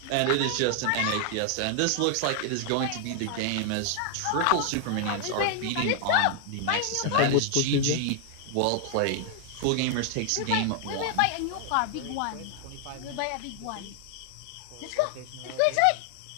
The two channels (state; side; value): different; both; correlation 0.00